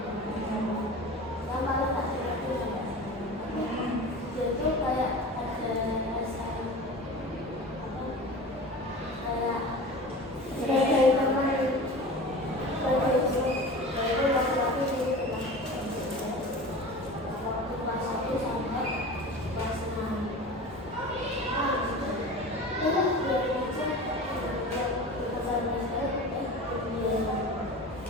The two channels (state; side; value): normal; both; correlation 0.34